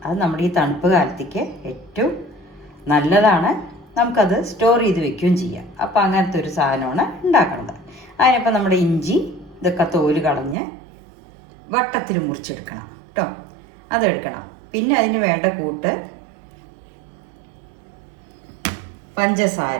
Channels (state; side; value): drops out; left; at 10.6 s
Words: അത് നമ്മുടെ ഈ തണുപ്പ് കാലത്തേക്ക് ഏറ്റവും നല്ലതാണ്. നമുക്കത് സ്റ്റോർ ചെയ്ത് വെക്കുകയും ചെയ്യാം. അപ്പോൾ അങ്ങനത്തെ ഒരു സാധനമാണ് ഉണ്ടാക്കുന്നത്. അതിനപ്പോൾ നമ്മുടെ ഇഞ്ചി ഇതൊക്കെ തോല് കളഞ്ഞ് വട്ടത്തിൽ മുറിച്ചെടുക്കണം കേട്ടോ. അതെടുക്കണം. പിന്നെ അതിന് വേണ്ട കൂട്ട്